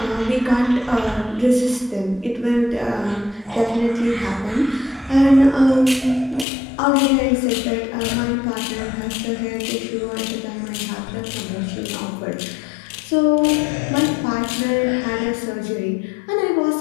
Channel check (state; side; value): drops out; right; at 6.5 s